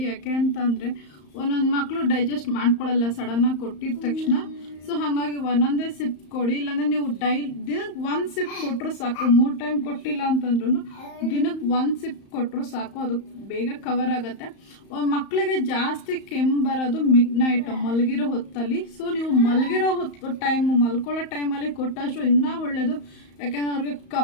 ಯಾಕೆ ಅಂತಂದರೆ ಒಂದೊಂದು ಮಕ್ಕಳು ಡೈಜೆಸ್ಟ್ ಮಾಡ್ಕೊಳ್ಳಲ್ಲ ಸಡನ್ನಾಗಿ ಕೊಟ್ಟಿದ ತಕ್ಷಣ. ಸೊ ಹಾಗಾಗಿ ಒಂದೊಂದೇ ಸಿಪ್ ಕೊಡಿ, ಇಲ್ಲಾಂದರೆ ನೀವು ದಿನಕ್ಕೆ 1 ಸಿಪ್ ಕೊಟ್ಟರು ಸಾಕು. 3 ಟೈಮ್ ಕೊಟ್ಟಿಲ್ಲ ಅಂತಂದ್ರೂ ದಿನಕ್ಕೆ 1 ಸಿಪ್ ಕೊಟ್ಟರು ಸಾಕು, ಅದು ಬೇಗ ಕವರ್ ಆಗುತ್ತೆ. ಮಕ್ಕಳಿಗೆ ಜಾಸ್ತಿ ಕೆಮ್ಮು ಬರೋದು ಮಿಡ್ ನೈಟ್ ಮಲಗಿರೋ ಹೊತ್ತಲ್ಲಿ. ಸೊ ನೀವು ಮಲಗಿರೋ ಮಲ್ಕೊಳ್ಳೋ ಟೈಮಲ್ಲಿ ಕೊಟ್ಟಷ್ಟು ಇನ್ನೂ ಒಳ್ಳೆಯದು. ಯಾಕೆಂದರೆ ಅವ್ರಿಗೆ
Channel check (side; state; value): right; late; 34 ms